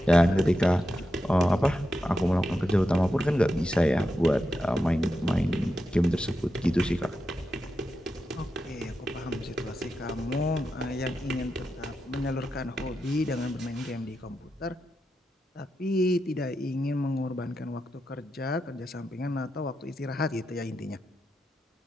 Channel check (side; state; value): both; normal; correlation 0.88